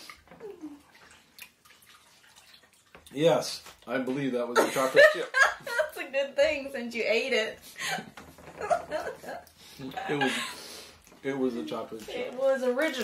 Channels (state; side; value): identical; both; correlation 1.00